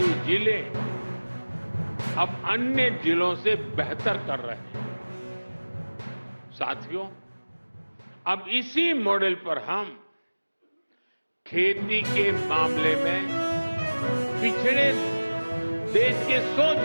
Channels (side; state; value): both; inverted; correlation -1.00